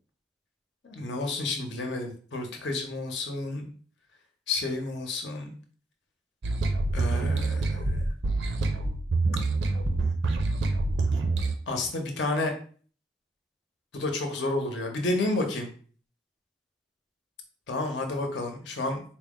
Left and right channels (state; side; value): normal; both; correlation 0.69